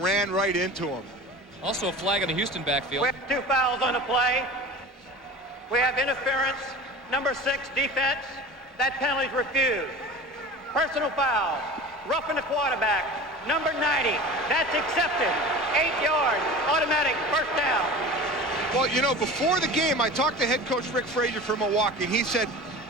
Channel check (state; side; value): normal; both; correlation 0.36